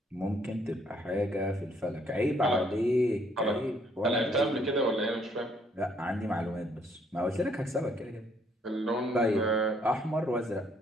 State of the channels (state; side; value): normal; both; correlation 0.67